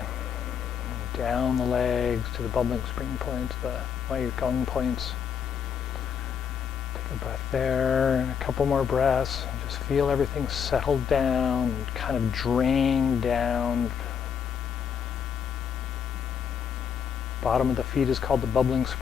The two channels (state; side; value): quieter; right; 7.4 dB